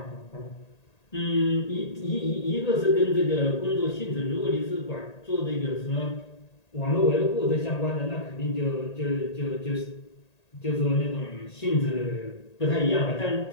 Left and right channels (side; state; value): right; late; 1.8 ms